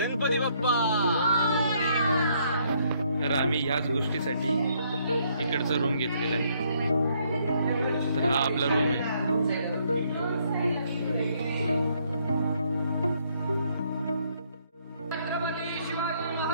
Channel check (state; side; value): inverted; both; correlation -0.69